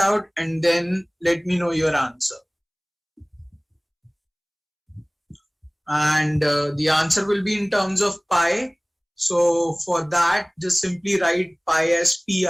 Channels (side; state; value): both; identical; correlation 1.00